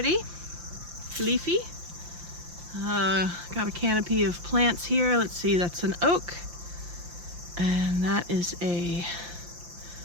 Leafy. Got a canopy of plants here. Let's see, that's an oak. And that is a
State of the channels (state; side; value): late; left; 5.8 ms